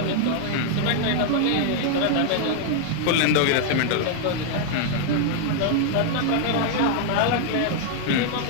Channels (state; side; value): different; both; correlation 0.00